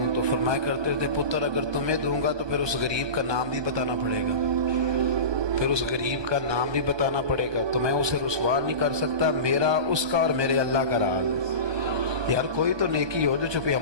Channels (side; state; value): left; late; 1.2 ms